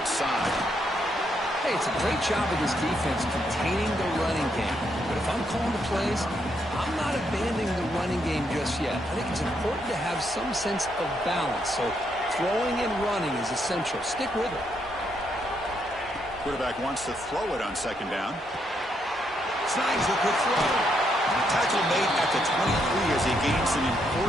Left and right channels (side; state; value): both; normal; correlation 0.77